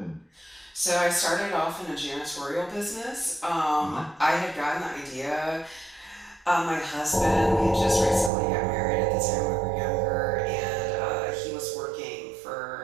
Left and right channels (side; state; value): left; drops out; at 8.3 s